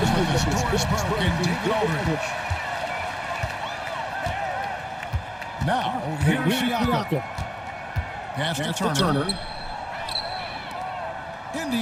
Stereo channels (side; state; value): both; identical; correlation 1.00